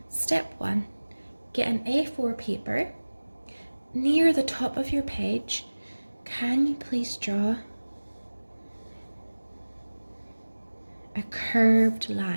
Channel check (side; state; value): both; inverted; correlation -1.00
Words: Step 1. Get an A4 paper. Near the top of your page, can you please draw a curved